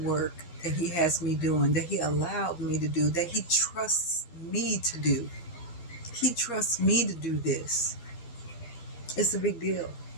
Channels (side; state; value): right; late; 12 ms